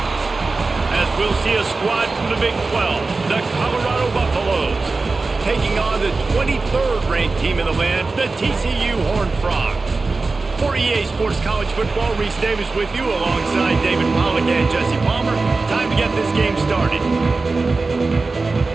As we'll see a squad from the Big 12, the Colorado Buffaloes, taking on the 23rd ranked team in the land, the TCU Horned Frogs. For EA Sports College Football, Reese Davis with you alongside David Pollack and Jesse Palmer. Time to get this game started.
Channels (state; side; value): quieter; left; 3.8 dB